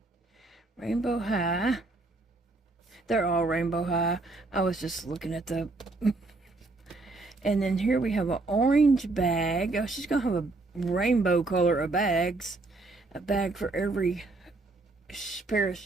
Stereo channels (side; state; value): left; quieter; 3.3 dB